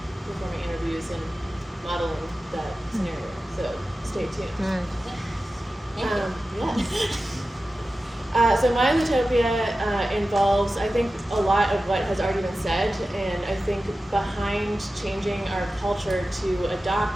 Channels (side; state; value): both; normal; correlation 0.94